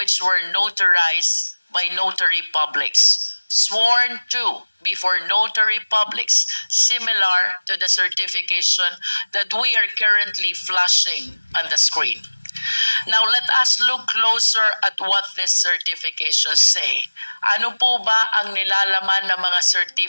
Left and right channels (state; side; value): inverted; both; correlation -1.00